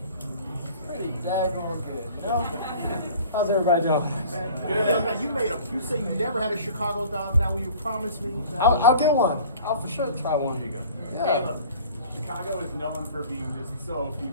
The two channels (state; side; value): inverted; both; correlation -0.46